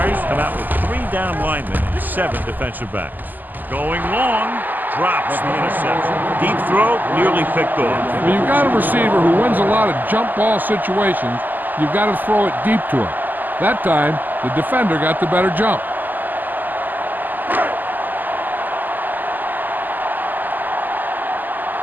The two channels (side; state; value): left; late; 0.086 ms